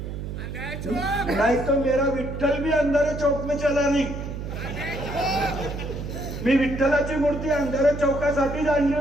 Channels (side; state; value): right; noise; hum, 7 dB below the sound